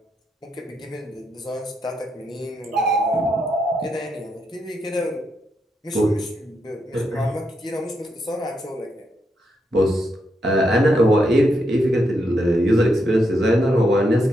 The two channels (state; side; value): normal; both; correlation 0.81